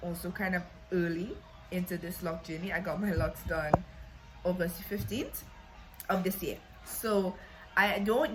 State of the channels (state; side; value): identical; both; correlation 1.00